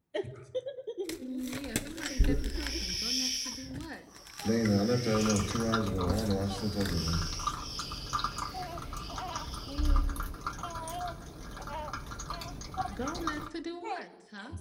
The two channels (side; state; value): both; identical; correlation 1.00